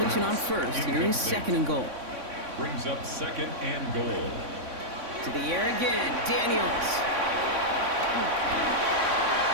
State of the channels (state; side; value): late; left; 3.6 ms